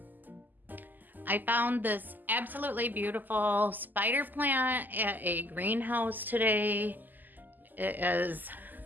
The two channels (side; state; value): left; late; 0.086 ms